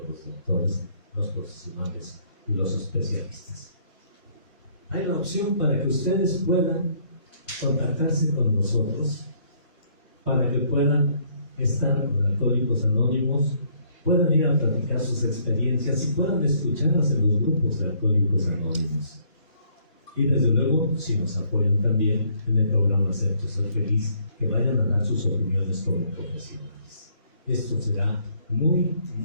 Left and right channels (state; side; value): inverted; both; correlation -0.65